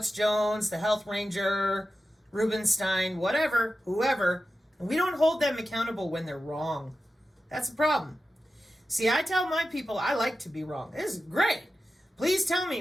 Jones, the Health Ranger, Rubenstein, whatever, whoever, and we don't hold them accountable when they're wrong. That's a problem. See, I tell my people I like to be wrong. This is great. Please tell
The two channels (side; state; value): both; normal; correlation 0.92